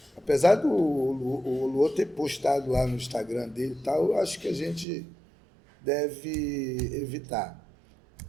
Apesar do Luô ter postado lá no Instagram dele e tal, eu acho que a gente deve evitar.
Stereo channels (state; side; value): drops out; left; at 4.9 s